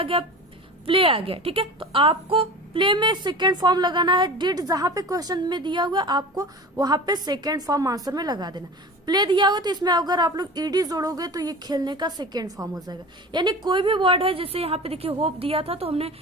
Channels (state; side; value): normal; both; correlation 0.34